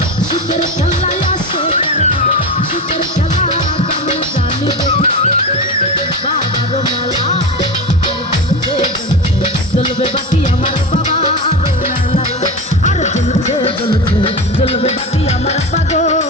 শীতের খেলায় আসে শীতের খেলা কেমন জানি বাবার মেলা জ্বলবে বাতি আমার বাবার মেলা আর জ্বলছে জ্বলছে জ্বলবে বাতি আমার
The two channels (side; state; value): both; normal; correlation 0.23